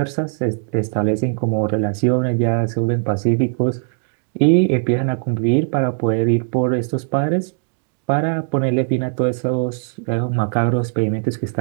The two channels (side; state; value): left; silent; 61 dB below the other